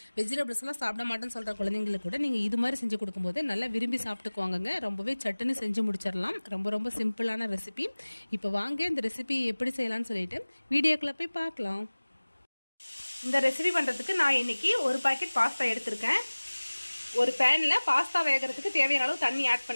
வெஜிடபிள்ஸ்லாம் சாப்பிட மாட்டேன்னு சொல்கிற குழந்தைங்களுக்கு கூட நீங்கள் இது மாதிரி செஞ்சு கொடுக்கும்போது நல்லா விரும்பி சாப்பிட்டுக்குவாங்க. ரொம்பவே சட்டுன்னு செஞ்சு முடிச்சிடலாம். ரொம்ப சிம்பிளான ரெசிபி. இப்போ வாங்க இந்த ரெசிபி எப்படி செய்யலாம்னு சொல்லிட்டு வீடியோக்குள்ளே போய் பார்க்கலாம். இந்த ரெசிபி பண்ணுறதுக்கு நான் இன்றைக்கி ஒரு பாக்கெட் பாஸ்தா எடுத்திருக்கேன். ஒரு பேனில் பாஸ்தா வேகிறதுக்கு தேவையான அளவு தண்ணி ஆட்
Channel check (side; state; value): both; inverted; correlation -1.00